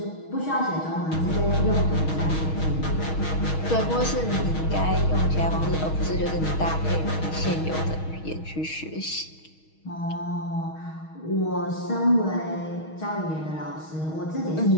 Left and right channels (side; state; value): right; late; 6.3 ms